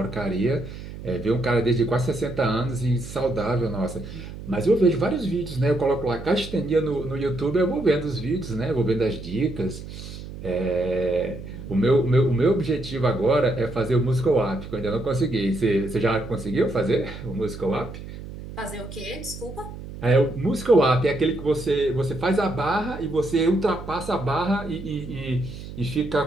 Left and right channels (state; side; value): noise; right; hum, 12 dB below the sound